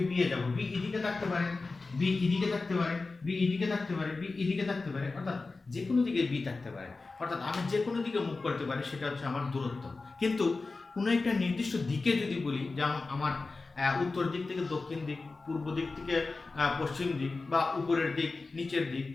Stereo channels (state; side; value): quieter; right; 3.7 dB